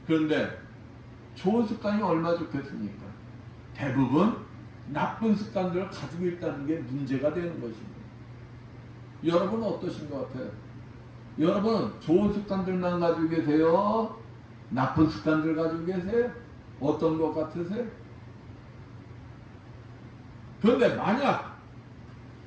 그런데 좋은 습관이 얼마나 좋겠습니까? 대부분 나쁜 습관들을 가지고 있다는 게 문제가 되는 것입니다. 여러분은 어떠신 것 같아요? 여러분 좋은 습관들만 가지고 계세요? 나쁜 습관들 가지고 계세요? 어떤 것 같으세요? 그런데 만약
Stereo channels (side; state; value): both; identical; correlation 1.00